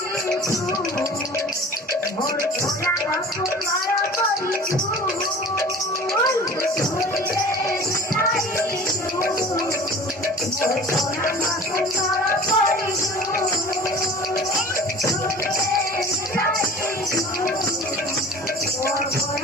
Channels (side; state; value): both; normal; correlation 0.42